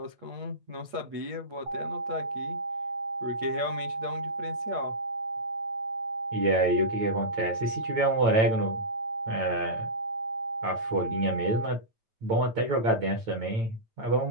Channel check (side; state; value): left; late; 9.0 ms